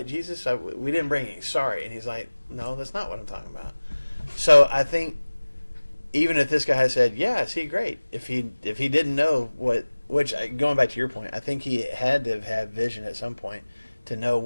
Jesus, we didn't bring any. Sorry. And he's like, no, that's not what I'm talking about. So I think even if this guy had said, yeah, I see, great. If he didn't know which going back to your point, I think he had to have had vision at some point to know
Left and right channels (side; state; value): both; inverted; correlation -1.00